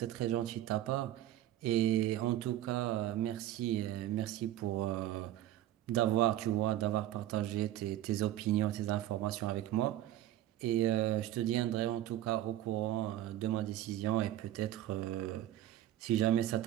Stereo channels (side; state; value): left; quieter; 13.2 dB